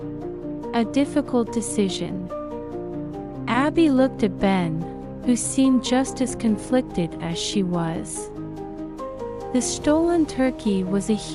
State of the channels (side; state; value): both; identical; correlation 1.00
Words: A difficult decision. Abby looked at Ben, who seemed just as conflicted as she was. The stolen turkey was a